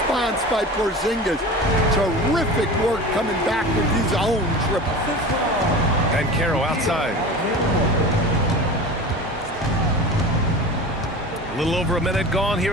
by Porzingis. Terrific work coming back with his own triple. Banchero outside. A little over a minute gone here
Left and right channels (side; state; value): both; normal; correlation 0.33